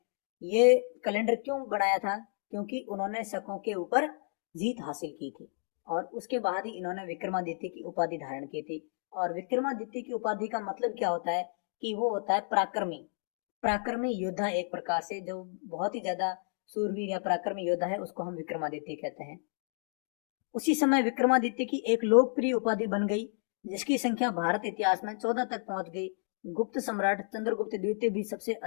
ये कैलेंडर क्यों बनाया था? क्योंकि उन्होंने शकों के ऊपर जीत हासिल की थी और उसके बाद ही इन्होंने विक्रमादित्य की उपाधि धारण की थी। और विक्रमादित्य की उपाधि का मतलब क्या होता है? कि वो होता है पराक्रमी योद्धा, एक प्रकार से जो बहुत ही ज्यादा सूरवीर या पराक्रमी योद्धा है, उसको हम विक्रमादित्य कहते हैं। उसी समय विक्रमादित्य की एक लोकप्रिय उपाधि बन गई, जिसकी संख्या भारत इतिहास में 14 तक पहुंच गई। गुप्त सम्राट चंद्रगुप्त द्वितीय भी सबसे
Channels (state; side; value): silent; right; 57 dB below the other